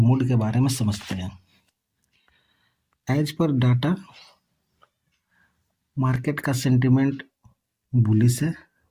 के बारे में समझते हैं। एज पर डाटा मार्केट का सेंटिमेंट बुलिश है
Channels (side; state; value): both; identical; correlation 1.00